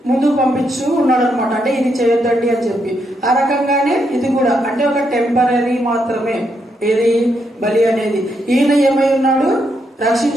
ముందుకు పంపించు ఉన్నాడు అనమాట. అంటే ఇది చేయొద్దండి అని చెప్పి. ఆ రకంగానే ఇది కూడా అంటే ఒక టెంపరీ మాత్రమే ఏది బలి అనేది. ఈయన ఏమై ఉన్నాడు?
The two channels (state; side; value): normal; both; correlation 0.79